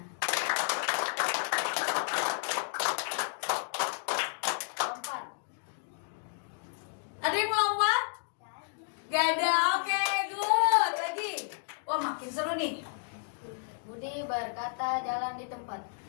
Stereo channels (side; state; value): right; silent; digital silence